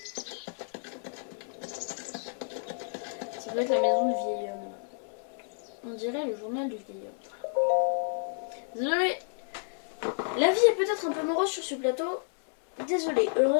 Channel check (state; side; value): silent; right; digital silence